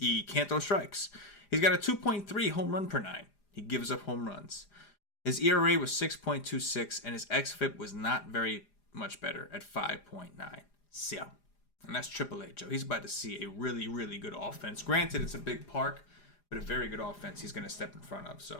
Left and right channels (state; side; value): late; right; 4.9 ms